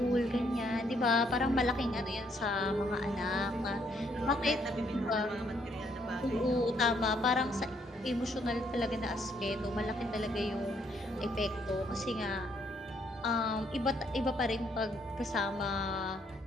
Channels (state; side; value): normal; both; correlation 0.70